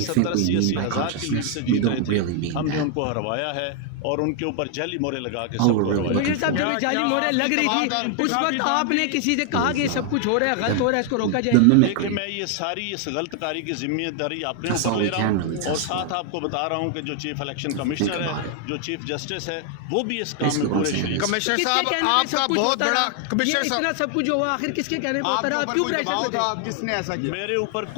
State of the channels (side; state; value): both; different; correlation 0.00